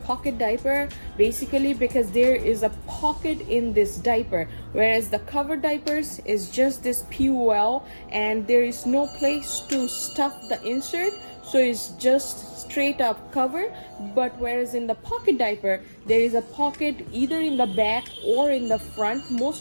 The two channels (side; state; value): both; inverted; correlation -1.00